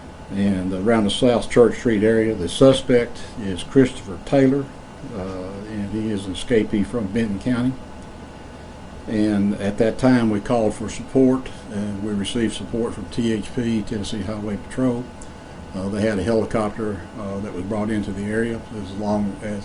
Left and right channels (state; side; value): identical; both; correlation 1.00